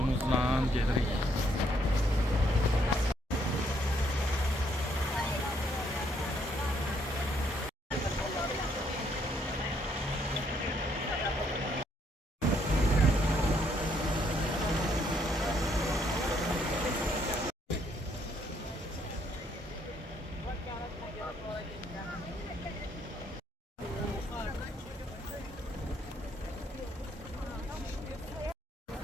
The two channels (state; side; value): normal; both; correlation 0.70